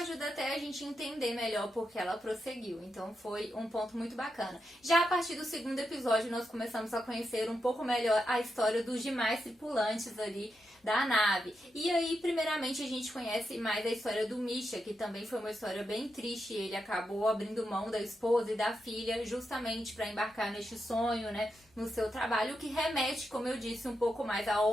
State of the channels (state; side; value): normal; both; correlation 0.86